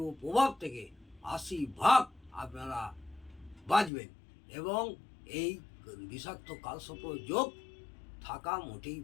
প্রভাব থেকে 80% আপনারা বাঁচবেন এবং এই বিষাক্ত কালসর্প যোগ থাকা মোটেই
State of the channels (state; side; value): drops out; right; at 3.9 s